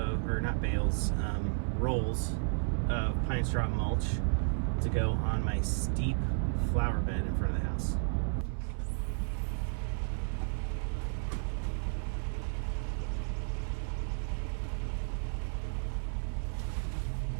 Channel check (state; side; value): silent; left; 56 dB below the other